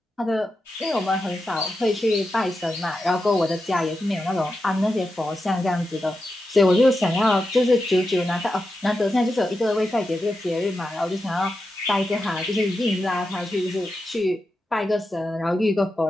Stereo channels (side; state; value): both; normal; correlation 0.89